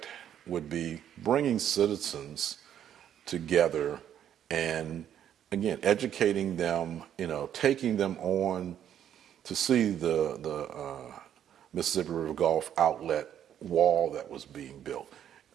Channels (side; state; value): left; quieter; 10.0 dB